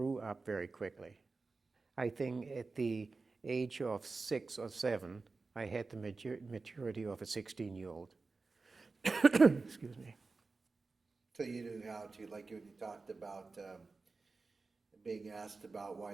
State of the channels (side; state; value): left; quieter; 4.0 dB